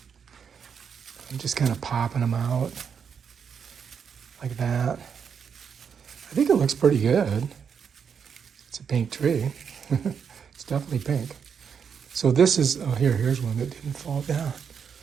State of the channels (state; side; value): quieter; left; 6.9 dB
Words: I'm just kind of popping them out like that. I think it looks pretty good. It's a pink tree. It's definitely pink. So this is, oh, here's one that didn't fall down.